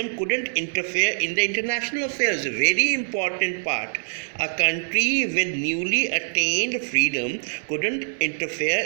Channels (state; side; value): silent; left; 63 dB below the other